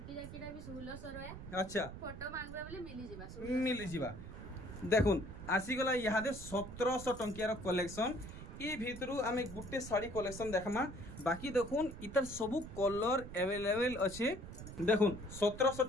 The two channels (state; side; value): noise; right; rumble, 11 dB below the sound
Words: जाकीटा भी 1600 रहे अच्छा फोटो मांगबा बोले मिली जिबा देखुन आसी गला यादे 1700 टंकियार कलेक्शन ई भितरु आमे गुटे साड़ी कलेक्शन देखमा बाकी देखुन इतर सबु कलर अवेलेबल अछि देखुन 1700